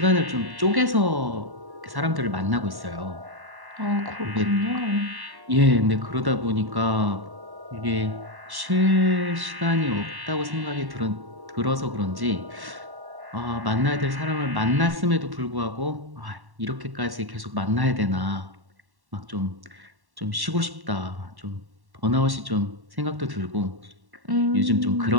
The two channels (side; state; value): left; late; 1.1 ms